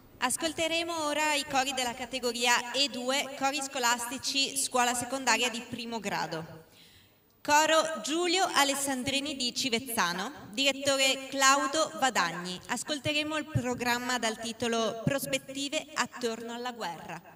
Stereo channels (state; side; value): identical; both; correlation 1.00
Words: Ascolteremo ora i cori della categoria E2, cori scolastici scuola secondaria di primo grado. Coro Giulio Alessandrini di Civezzano, direttore Claudio Vadagni. Ascolteremo il programma dal titolo Prospettive attorno alla guerra.